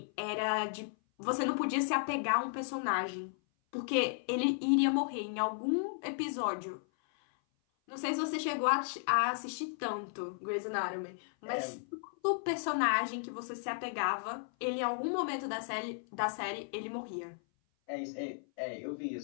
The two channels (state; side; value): silent; right; 55 dB below the other